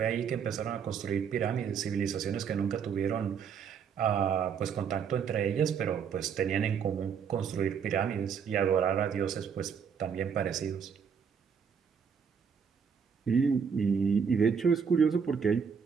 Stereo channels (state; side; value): quieter; left; 6.8 dB